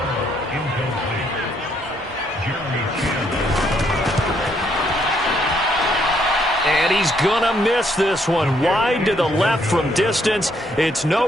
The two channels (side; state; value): both; normal; correlation 0.71